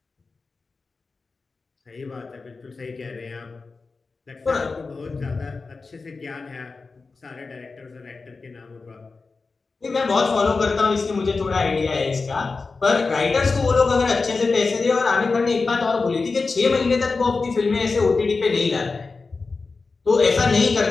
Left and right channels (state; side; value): quieter; right; 4.2 dB